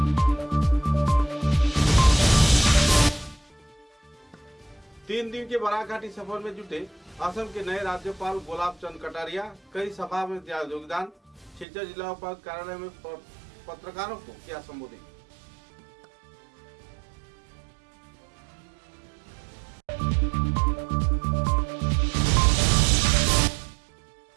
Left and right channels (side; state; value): left; drops out; at 11.7 s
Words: 3 दिन के बराक घाटी सफर में जुटे असम के नए राज्यपाल गुलाब चंद कटारिया कई सभा में दिया योगदान। सिलचर जिला उपायुक्त कार्यालय में पत्रकारों को किया संबोधित।